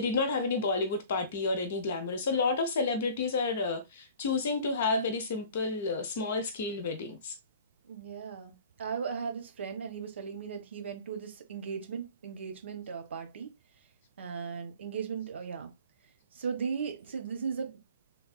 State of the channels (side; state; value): both; inverted; correlation -0.46